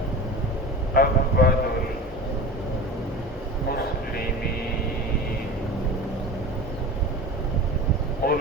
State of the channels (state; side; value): normal; both; correlation 0.33